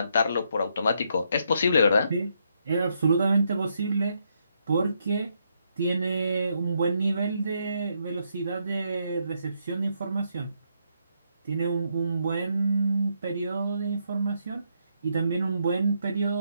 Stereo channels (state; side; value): inverted; both; correlation -0.77